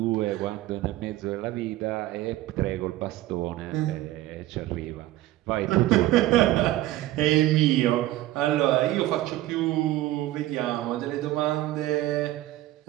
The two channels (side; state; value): left; quieter; 15.6 dB